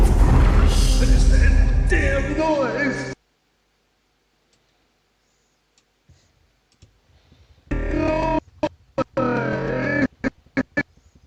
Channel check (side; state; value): both; identical; correlation 1.00